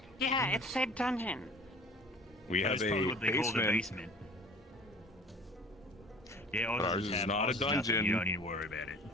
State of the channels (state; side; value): normal; both; correlation 0.46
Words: Yeah, it said dungeon. We have That's probably a what they call the basement. Yeah, Ours is not a dungeon. You don't need to worry about it.